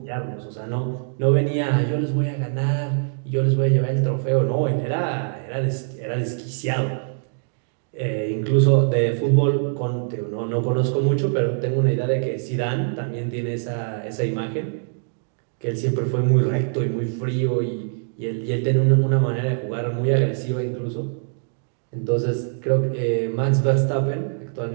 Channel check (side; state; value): left; silent; digital silence